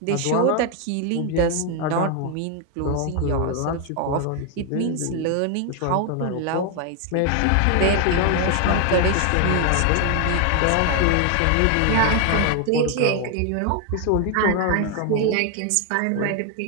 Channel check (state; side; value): different; both; correlation 0.00